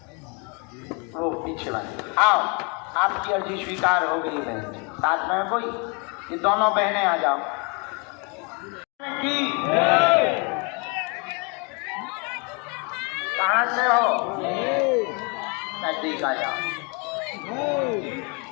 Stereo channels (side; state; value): right; quieter; 33.0 dB